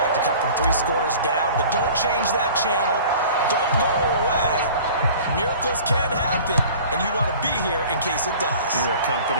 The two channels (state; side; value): inverted; both; correlation -0.44